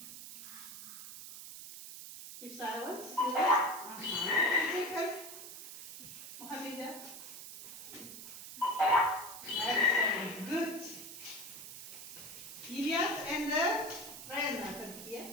Keep silence. Second. Mohammedia. Excellent. Good. Ilyas and the Ryan are here.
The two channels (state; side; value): noise; right; hiss, 11 dB below the sound